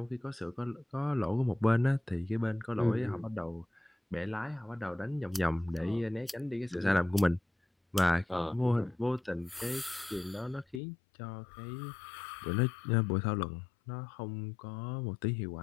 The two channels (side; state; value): right; drops out; at 10.8 s